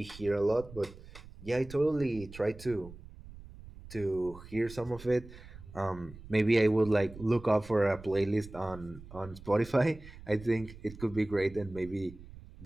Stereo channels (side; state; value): right; noise; rumble, 17 dB below the sound